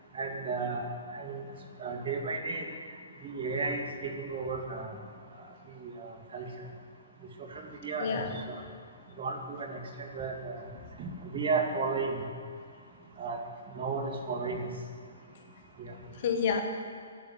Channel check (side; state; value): both; inverted; correlation -0.32